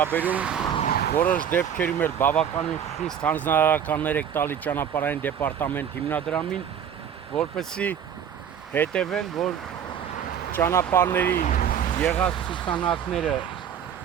որոշ դեպքերում էլ բավականին խիստ հանձնարարականներ եք տալի ճանապարհային դեպարտամենտ հիմնադրամին, որպեսզի հետևեն, որ ճանապարհների եղած ցուցանակները,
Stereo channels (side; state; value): left; quieter; 8.5 dB